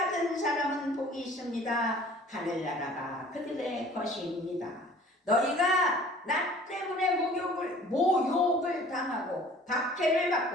사람은 복이 있습니다. 하늘나라가 그들의 것입니다. 너희가 나 때문에 모욕을 당하고 박해를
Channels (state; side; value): normal; both; correlation 0.49